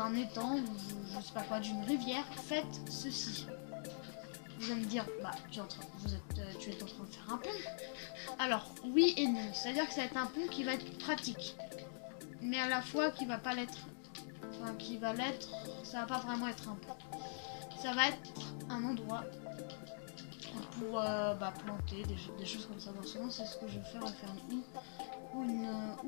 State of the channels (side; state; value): right; silent; digital silence